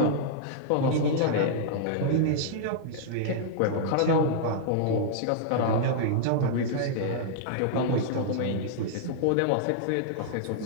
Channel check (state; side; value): different; both; correlation -0.02